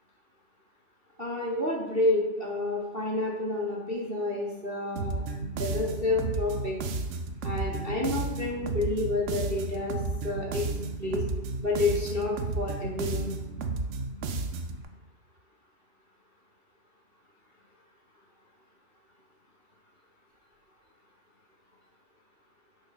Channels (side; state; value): left; late; 3.5 ms